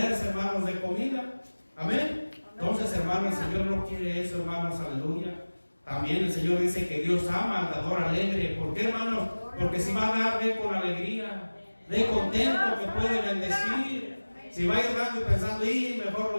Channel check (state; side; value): inverted; both; correlation -1.00